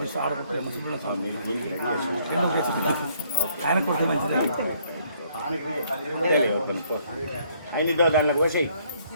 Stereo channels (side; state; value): both; inverted; correlation -0.66